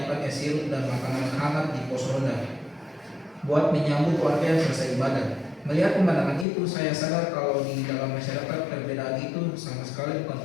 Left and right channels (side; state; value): right; drops out; at 6.5 s